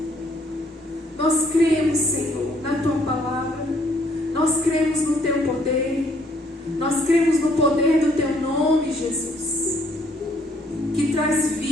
Nós cremos, Senhor, na Tua palavra. Nós cremos no Teu poder. Nós cremos no poder do Teu nome, Jesus. Que traz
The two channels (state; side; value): normal; both; correlation 0.66